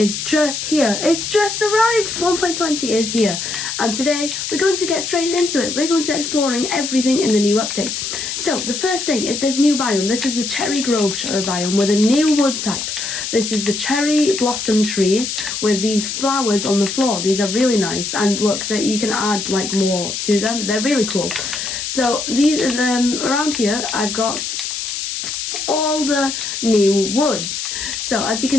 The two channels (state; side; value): noise; left; hiss, 4 dB below the sound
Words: just here. It's just arrived. 1.20 is here. And today we're going to get straight into it. We're going to exploring everything in the new updates. So the first thing is this new biome. This is a cherry grove biome with a new wood type. This is the cherry blossom trees with these flowers on the floor. These are really nice, and look that you can add like more to them. They're really cool. So these around here I've got all the new woods. So as you